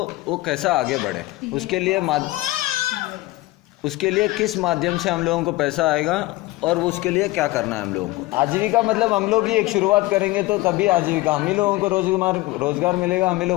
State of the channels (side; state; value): right; quieter; 19.7 dB